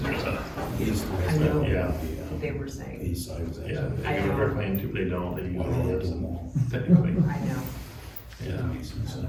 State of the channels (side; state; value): both; identical; correlation 1.00